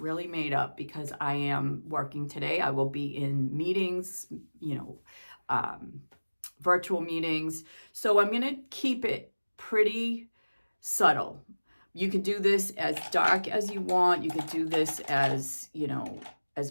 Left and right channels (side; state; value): both; inverted; correlation -1.00